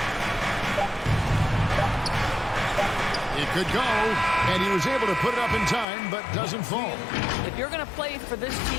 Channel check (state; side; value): drops out; right; at 5.9 s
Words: It could go, and he was able to put it up in time, but doesn't fall. If you're going to play for this